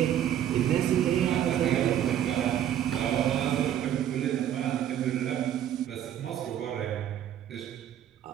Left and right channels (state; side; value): quieter; left; 10.6 dB